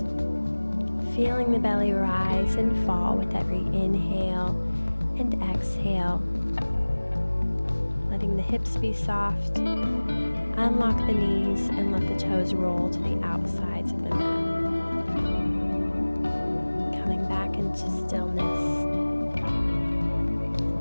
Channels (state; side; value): inverted; both; correlation -1.00